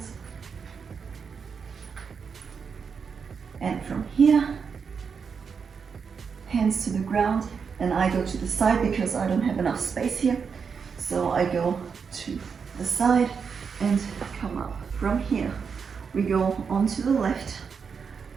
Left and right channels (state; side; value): quieter; left; 6.0 dB